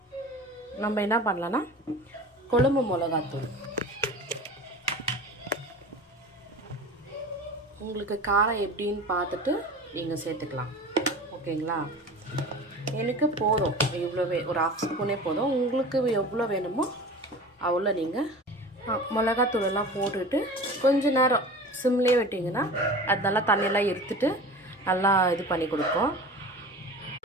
நம்ம என்ன பண்ணலான்னா, குழம்பு மிளகாத்தூள் உங்களுக்கு காரம் எப்படின்னு பார்த்துட்டு நீங்கள் சேர்த்துக்கலாம், ஓகேங்களா? எனக்கு போதும், இவ்வளோவே ஒரு 1/2 ஸ்பூனே போதும். உங்களுக்கு எவ்வளோ வேணுமோ அவ்வளோ நீங்கள் மிளகாத்தூளெல்லாம் போட்டுட்டு கொஞ்சம் நேரம் சிம்லேயே விட்டிங்கன்னா அது நல்லா தண்ணியெல்லாம் எடுத்துட்டு நல்லா இது பண்ணி கொடுக்கும்.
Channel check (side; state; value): both; normal; correlation 0.36